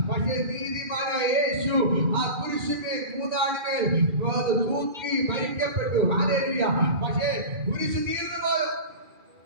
പക്ഷേ നീതിമാനായ യേശു ആ കുരിശിന്മേൽ 3 ആണിമേൽ തൂക്കി മരിക്കപ്പെട്ടു. ഹല്ലേലൂയ. പക്ഷേ കുരിശ് തീർന്നു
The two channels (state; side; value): late; left; 2.4 ms